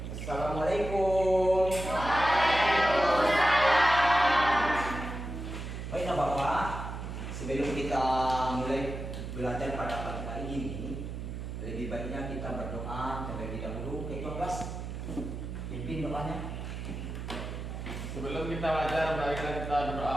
Assalamualaikum. Baiklah Bapak, sebelum kita mulai belajar pada pagi hari ini, lebih baiknya kita berdoa terlebih dahulu. Ketua kelas, pimpin doanya. Sebelum kita belajar, marilah kita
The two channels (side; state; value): right; noise; hum, 7 dB below the sound